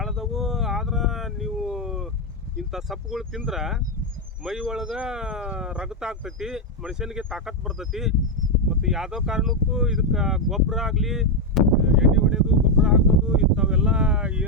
ಆದ್ರೆ ನೀವು ಇಂಥ ಸಪ್ಪುಗಳು ತಿಂದ್ರೆ ಮೈ ಒಳಗೆ ರಗತ ಆಗ್ತೈತಿ, ಮನುಷ್ಯನಿಗೆ ತಾಕತ್ತು ಬರ್ತೈತಿ. ಮತ್ತು ಯಾವುದೋ ಕಾರಣಕ್ಕೂ ಇದಕ್ಕೆ ಗೊಬ್ಬರ ಆಗಲಿ, ಎಣ್ಣೆ ಹೊಡೆಯೋದು, ಗೊಬ್ಬರ ಹಾಕೋದು ಇಂಥವೆಲ್ಲ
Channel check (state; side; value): normal; both; correlation 0.03